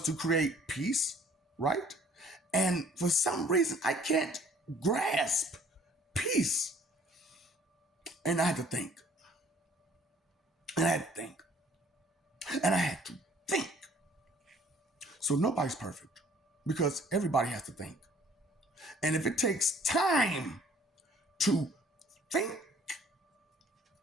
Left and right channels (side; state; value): both; normal; correlation 0.56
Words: to create peace, right? And for some reason, I can't grasp peace. And I had to think. And I had to think. And I had to think. So nobody's perfect because everybody has to think. And if it takes time to think,